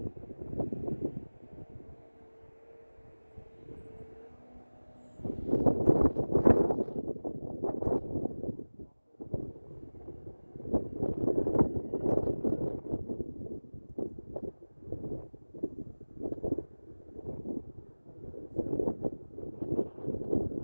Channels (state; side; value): inverted; both; correlation -1.00